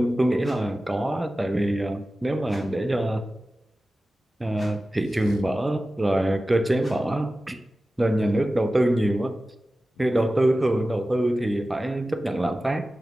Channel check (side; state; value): both; normal; correlation 0.95